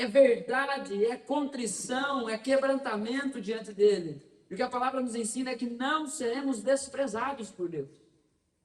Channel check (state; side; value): identical; both; correlation 1.00